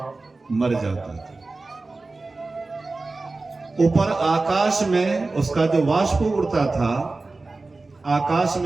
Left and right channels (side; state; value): left; quieter; 3.5 dB